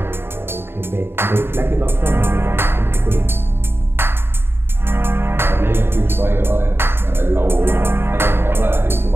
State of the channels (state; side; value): late; left; 0.11 ms